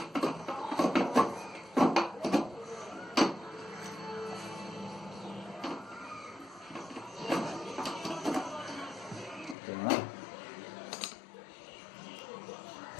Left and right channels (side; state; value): right; drops out; at 9.6 s